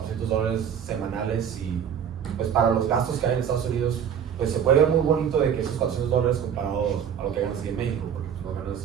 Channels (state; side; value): quieter; left; 8.3 dB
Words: semanales y pues para los gastos que hay en Estados Unidos, pues se puede ver muy bonito de que esos $400 comparado a lo que ganas aquí en México, porque pues,